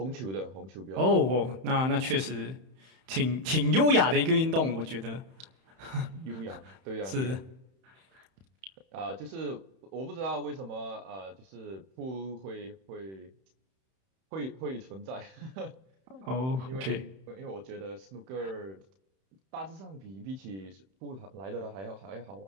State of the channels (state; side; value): late; left; 31 ms